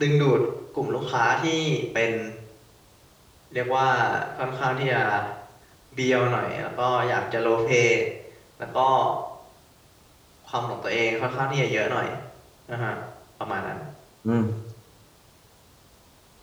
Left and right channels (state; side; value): identical; both; correlation 1.00